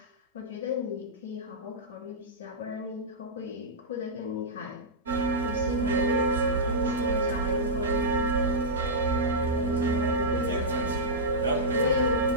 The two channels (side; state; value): both; normal; correlation -0.13